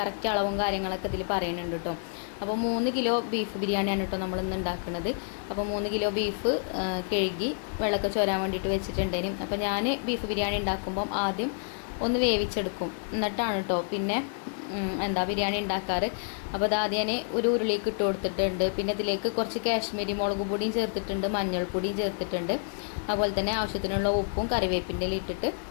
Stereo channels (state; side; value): silent; right; digital silence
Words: അളവും കാര്യങ്ങളൊക്കെ ഇതിൽ പറയുന്നുണ്ട് കേട്ടോ. അപ്പോൾ 3 കിലോ ബീഫ് ബിരിയാണിയാണ് കേട്ടോ നമ്മളിന്ന് ഉണ്ടാക്കുന്നത്. അപ്പോൾ 3 കിലോ ബീഫ് കഴുകി വെള്ളമൊക്കെ ചോരാൻ വേണ്ടിയിട്ട് വെച്ചിട്ടുണ്ടേനും. അപ്പോൾ ഞാൻ ബീഫ് ബിരിയാണി ഉണ്ടാക്കുമ്പം ആദ്യം ഒന്ന് വേവിച്ചെടുക്കും, എന്നിട്ടാണ് കേട്ടോ പിന്നെ ബിരിയാണി ഉണ്ടാക്കാറ്. അപ്പോൾ അത് ആദ്യം ഞാൻ ഒരു ഉരുളിക്ക് ഇട്ട് കൊടുത്തിട്ടുണ്ട്. പിന്നെ ഇതിലേക്ക് കുറച്ച് കാശ്മീരി മുളക് പൊടിയും ചേർത്തിട്ടുണ്ട്, മഞ്ഞൾപ്പൊടിയും ചേർത്തിട്ടുണ്ട്. അതുപോലെ തന്നെ ആവശ്യത്തിനുള്ള ഉപ്പും കറിവേപ്പിൻ്റെ ഇട്ടിട്ട്